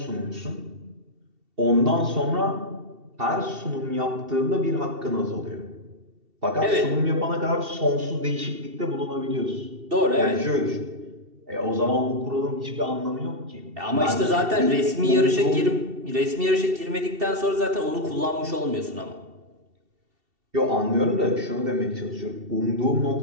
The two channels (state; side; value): late; left; 2.7 ms